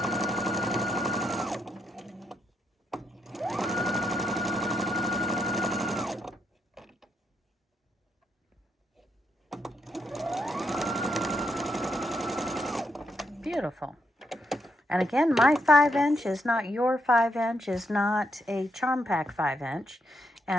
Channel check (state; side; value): normal; both; correlation 0.79